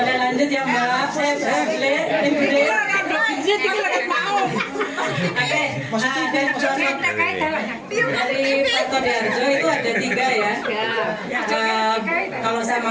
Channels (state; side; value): identical; both; correlation 1.00